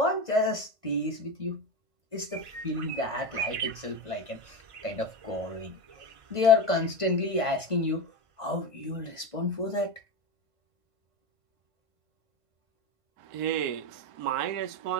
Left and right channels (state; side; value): late; left; 1.5 ms